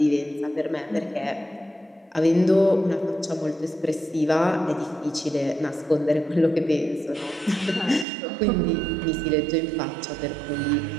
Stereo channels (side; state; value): left; drops out; at 8.1 s